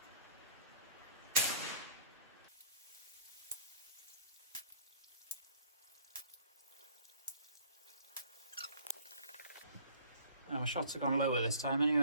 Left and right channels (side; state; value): both; inverted; correlation -0.53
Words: My shots have gone lower this time